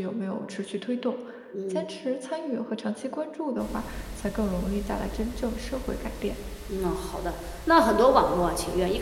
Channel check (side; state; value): both; identical; correlation 1.00